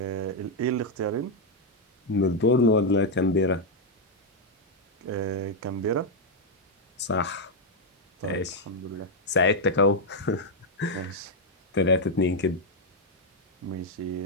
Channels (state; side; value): normal; both; correlation 0.01